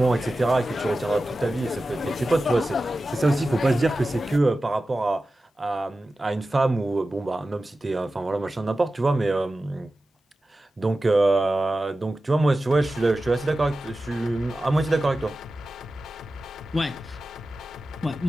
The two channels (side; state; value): both; normal; correlation 0.94